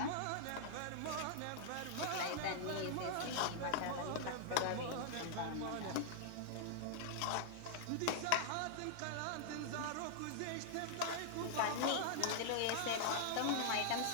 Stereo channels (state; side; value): different; both; correlation -0.01